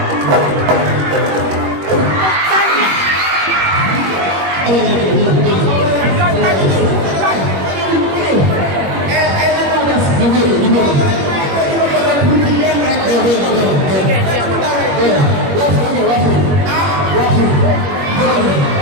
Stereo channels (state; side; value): late; left; 21 ms